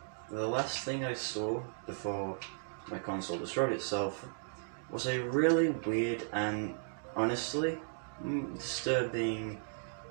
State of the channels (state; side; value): silent; left; digital silence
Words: the last thing I saw before my console destroyed itself was a really weird and honestly disturbing